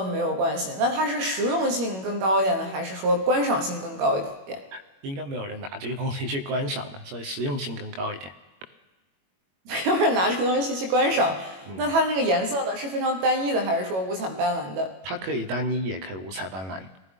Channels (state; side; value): late; left; 21 ms